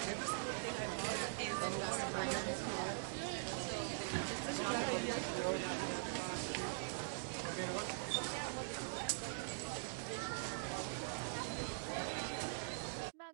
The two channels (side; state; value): left; silent; digital silence